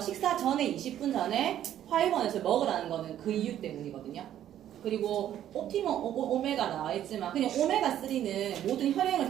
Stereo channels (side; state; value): left; quieter; 11.3 dB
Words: 전에 20분 전에 화이버넷을 먹으라는 거는 그 이유 때문이거든요. 그리고 옵티멈 오메가 나와 있지만 그냥 오메가3는 모든 혈행을